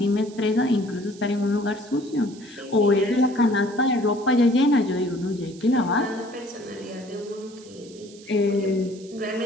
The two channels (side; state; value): right; noise; hiss, 22 dB below the sound